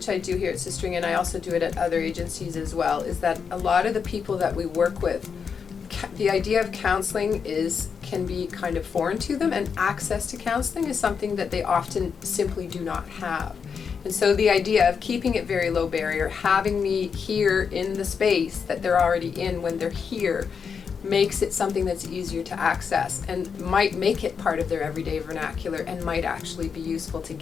I do here at Sistering, and I also do it at other agencies as well, is that a lot of the people that we work with, the idea of counseling can be kind of foreign to them, and access to counseling is something that they often simply do not have. And so the idea of keeping it very low barrier, having me here in the space that they're already in when they're here, makes it something that's easier to access and might make it part of their everyday vernacular and might actually be useful to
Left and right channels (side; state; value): right; quieter; 6.3 dB